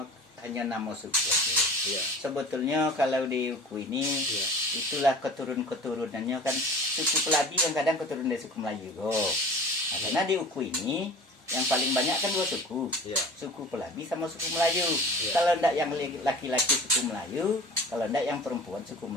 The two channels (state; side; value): normal; both; correlation 0.40